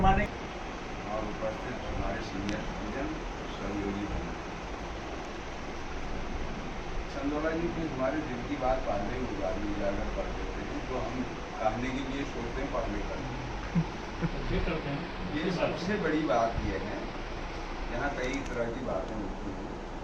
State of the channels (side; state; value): both; identical; correlation 1.00